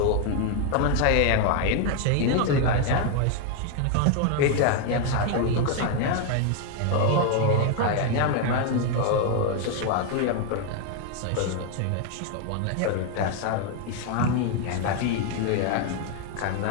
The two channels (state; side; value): different; both; correlation 0.01